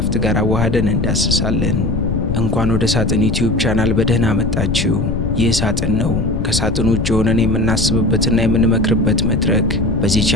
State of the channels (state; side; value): noise; left; rumble, 1 dB below the sound